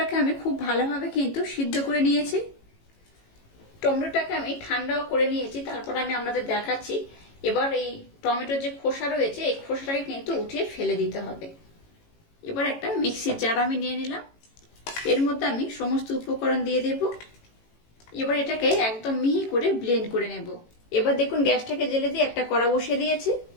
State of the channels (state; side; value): late; right; 18 ms